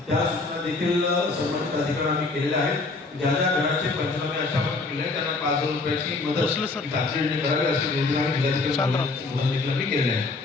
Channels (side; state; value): right; quieter; 3.6 dB